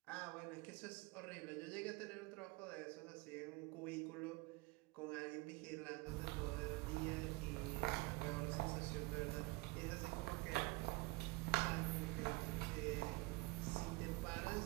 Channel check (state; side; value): quieter; left; 23.0 dB